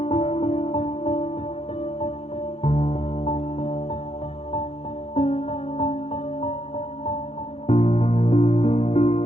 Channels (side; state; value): right; late; 0.29 ms